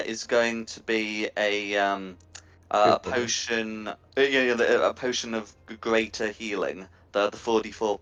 is going to be a potion, a potion of greater healing, the 44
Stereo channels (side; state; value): both; identical; correlation 1.00